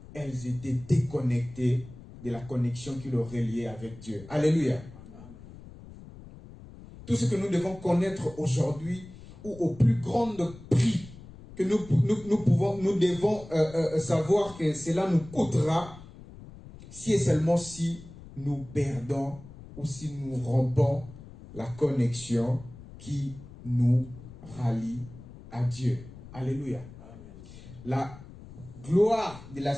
elles étaient déconnectées de la connexion qui les reliait avec Dieu. Alléluia. Tout ce que nous devons connaître aujourd'hui, ou au plus grand prix que nous devons savoir que cela nous coûtera, si et seulement si nous perdons ou si nous rompons la connexion qui nous rallie à Dieu. Alléluia. La gloire de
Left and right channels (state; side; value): noise; left; rumble, 17 dB below the sound